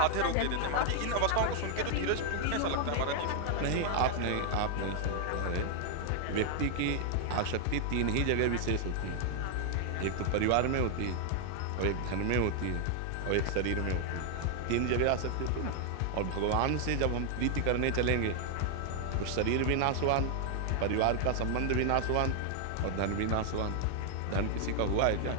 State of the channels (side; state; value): both; different; correlation 0.00